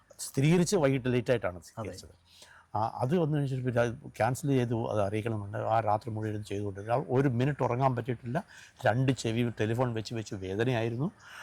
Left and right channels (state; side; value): identical; both; correlation 1.00